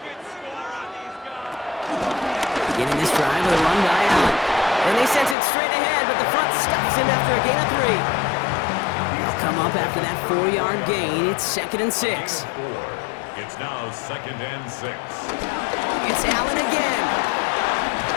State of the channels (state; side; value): drops out; right; at 5.4 s